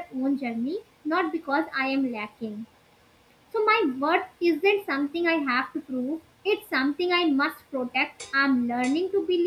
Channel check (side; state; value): both; identical; correlation 1.00